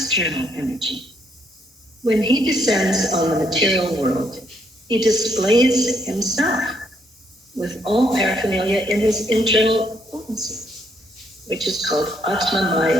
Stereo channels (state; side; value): normal; both; correlation 0.72